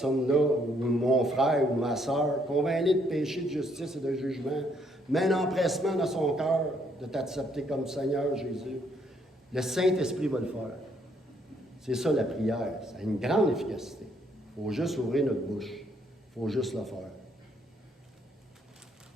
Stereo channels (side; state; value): both; normal; correlation 0.70